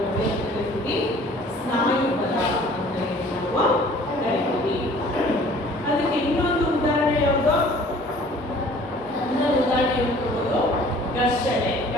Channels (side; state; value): both; normal; correlation 0.51